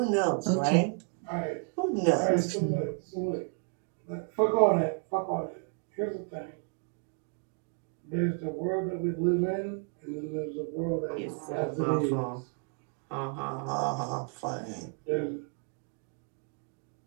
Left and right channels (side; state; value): left; quieter; 40.0 dB